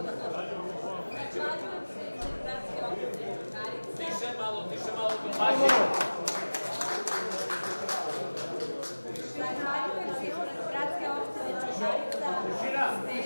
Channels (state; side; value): inverted; both; correlation -1.00